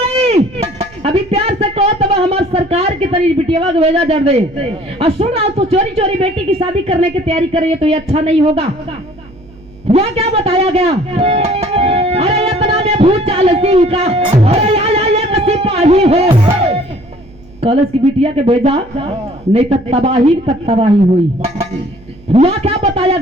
अभी प्यार से कहो तब हमारे सरकार की तरी बिटिया को भेजा जड़ दे और सुन रहा तो चोरी चोरी बेटी की शादी करने की तैयारी कर रही है तो ये अच्छा नहीं होगा। वह क्या बताया गया अरे इतना में भूचाल सिंह का अरे ये सिपाही हो कलश की बिटिया के भेजा नहीं तो तबाही तक तबाही हुई। वह क्या बताया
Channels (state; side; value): noise; right; hum, 25 dB below the sound